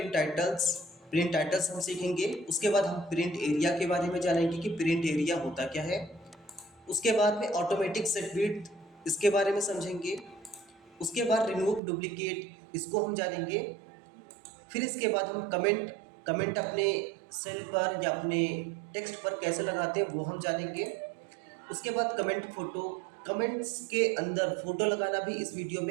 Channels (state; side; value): drops out; left; at 11.8 s